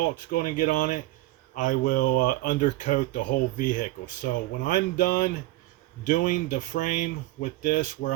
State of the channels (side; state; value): left; quieter; 17.8 dB